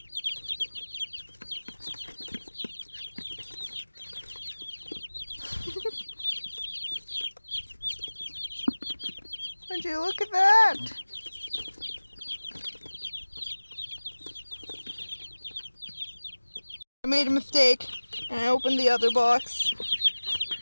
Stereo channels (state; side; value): inverted; both; correlation -1.00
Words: Would you look at that? I made a mistake and I opened the other box.